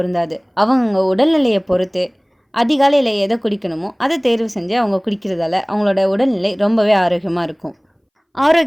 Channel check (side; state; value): both; identical; correlation 1.00